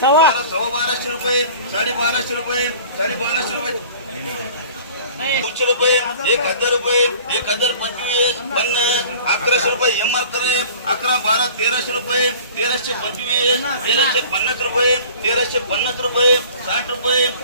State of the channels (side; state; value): both; inverted; correlation -0.45